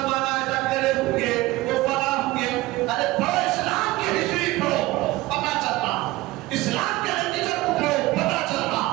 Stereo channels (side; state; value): left; quieter; 19.2 dB